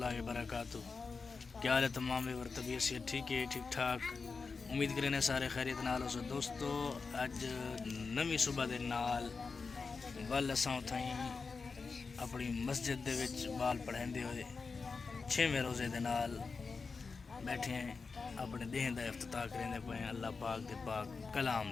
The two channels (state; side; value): quieter; right; 4.7 dB